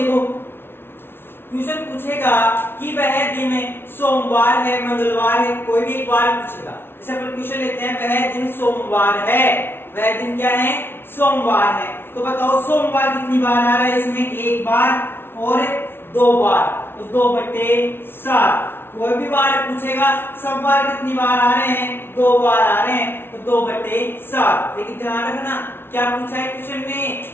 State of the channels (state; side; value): late; right; 0.11 ms